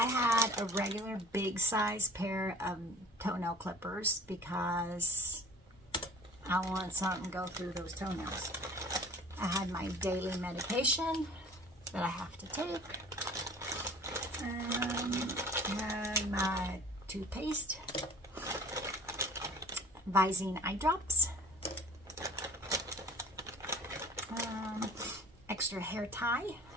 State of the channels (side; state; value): both; normal; correlation 0.46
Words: had a regular big size pair of toenail clippers because I wanted something to go through those toenails. I had my daily medication that I have to take. I had my toothpaste, Visine eye drops, extra hair tie,